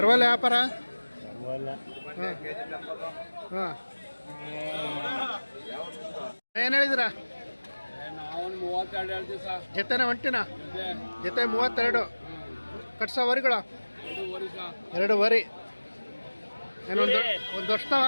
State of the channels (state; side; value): inverted; both; correlation -1.00